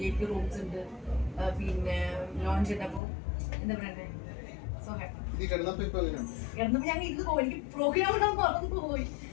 റൂംസ് ഉണ്ട്, പിന്നെ ലോഞ്ച് ഉണ്ട്. അപ്പോൾ എന്താ പറയണ്ടേ, സോ ഹാപ്പി. കിടന്നപ്പോ ഞാൻ ഇരുന്ന് പോയി. എനിക്ക് പ്രോഗ്രാം ഉണ്ടാകുമ്പോൾ മറന്നു പോയി.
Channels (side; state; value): right; drops out; at 3.0 s